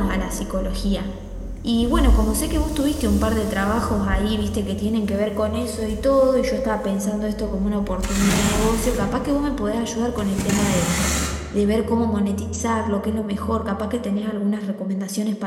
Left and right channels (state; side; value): identical; both; correlation 1.00